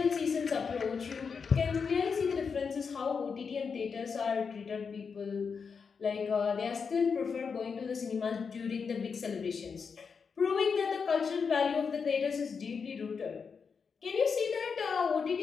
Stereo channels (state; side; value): quieter; right; 5.7 dB